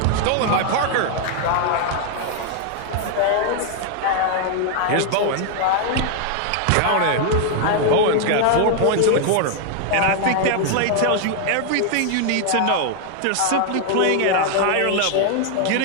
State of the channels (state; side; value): different; both; correlation 0.00